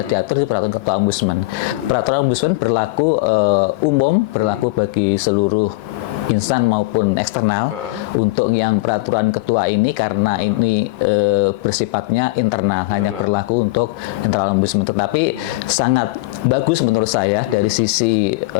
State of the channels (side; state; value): right; quieter; 22.2 dB